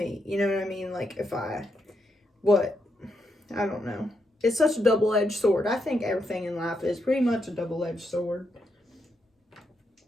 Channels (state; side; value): normal; both; correlation 0.81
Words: You know what I mean? Like, if I don't know. It's such a double-edged sword. I think everything in life is pretty much a double-edged sword.